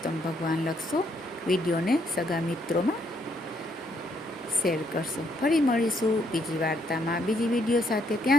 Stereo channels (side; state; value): both; normal; correlation 0.72